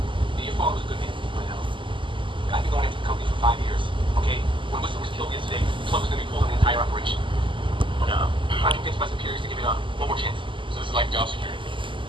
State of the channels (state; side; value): late; left; 0.24 ms